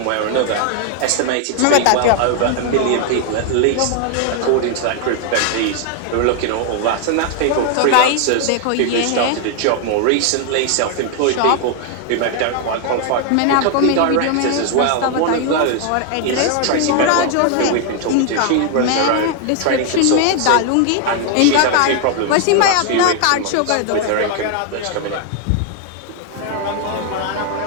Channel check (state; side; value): different; both; correlation 0.00